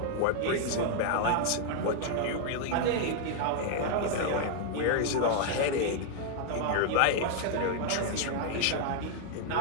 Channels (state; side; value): different; both; correlation 0.00